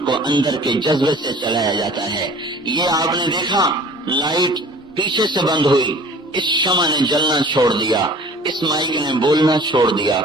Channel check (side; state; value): both; normal; correlation 0.47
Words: کو اندر کے جذبے سے چلایا جاتا ہے. یہ آپ نے دیکھا، لائٹ پیچھے سے بند ہوئی، اس شمع نے جلنا چھوڑ دیا، اس مائک نے بولنا چھوڑ دیا.